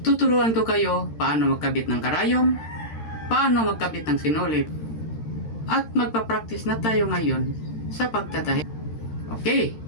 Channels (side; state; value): right; late; 13 ms